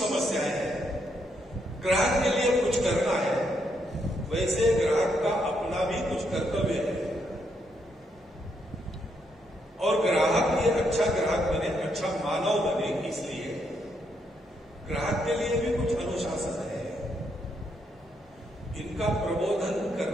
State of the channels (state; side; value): normal; both; correlation 0.77